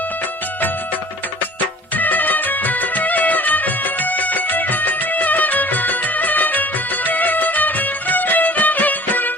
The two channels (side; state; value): both; normal; correlation 0.46